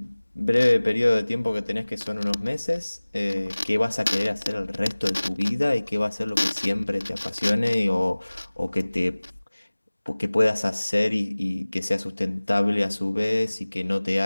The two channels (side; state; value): both; inverted; correlation -1.00